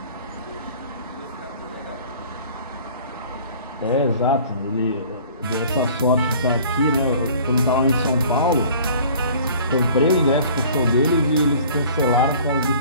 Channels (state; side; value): inverted; both; correlation -0.49